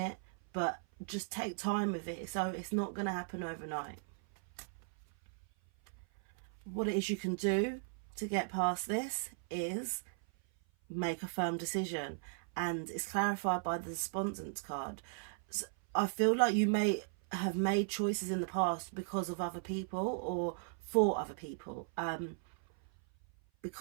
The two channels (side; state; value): left; silent; 53 dB below the other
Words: but just take time with it. So it's not going to happen overnight. What it is you can do to get past this is make a firm decision, and it's clarified by the despondence card. So I feel like you may have made choices in the past because of other people or for other people,